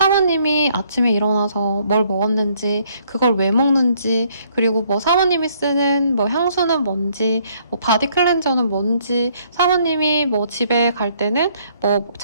아침에 일어나서 뭘 먹었는지 그걸 왜 먹는지 그리고 뭐 사모님이 쓰는 뭐 향수는 뭔지 뭐 바디 클렌저는 뭔지 사모님이 뭐 집에 갈 때는 뭐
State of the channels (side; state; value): both; inverted; correlation -0.66